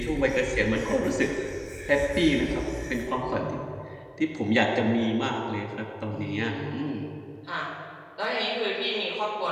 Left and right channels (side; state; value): both; identical; correlation 1.00